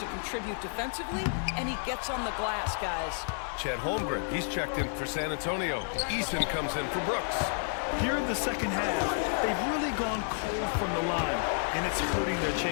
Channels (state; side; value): silent; right; 57 dB below the other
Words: contribute defensively, and he gets on the glass, guys. Chet Holmgren, he's checked in for San Antonio. Eason comes in for Brooks. Here in the second half, they've really gone cold from the line, and it's hurting their